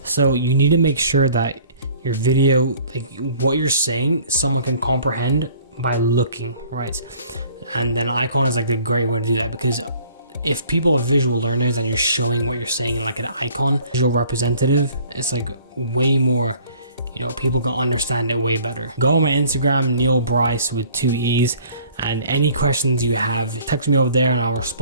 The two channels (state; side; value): inverted; both; correlation -0.54